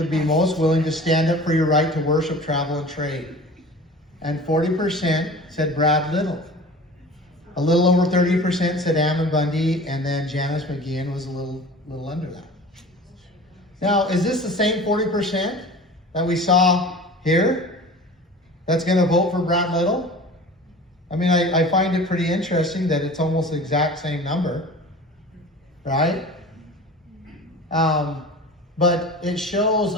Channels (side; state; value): both; normal; correlation 0.40